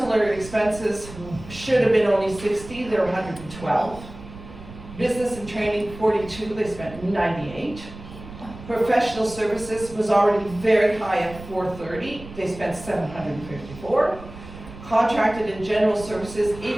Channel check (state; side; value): noise; right; rumble, 15 dB below the sound